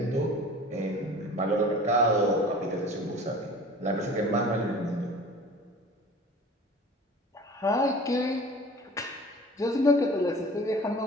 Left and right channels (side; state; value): both; normal; correlation 0.42